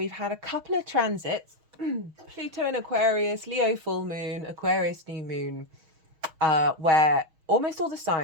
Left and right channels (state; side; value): late; left; 6.4 ms